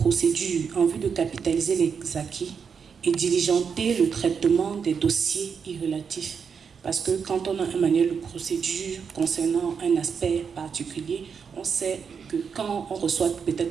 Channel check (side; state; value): left; quieter; 6.4 dB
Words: en vue de capitaliser les acquis et diligenter le traitement des dossiers irrelatifs. Parce que quand on a un manuel de procédure concernant un aspect particulier, on sait que quand on reçoit